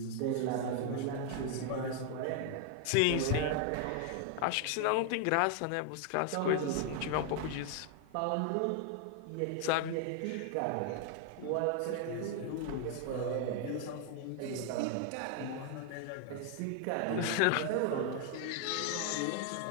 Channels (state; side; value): different; both; correlation 0.00